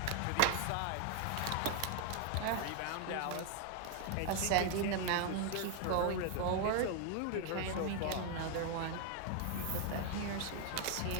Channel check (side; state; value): both; different; correlation 0.00